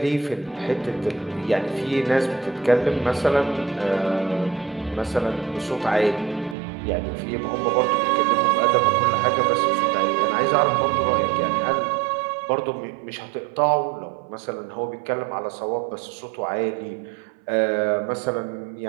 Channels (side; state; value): left; drops out; at 6.6 s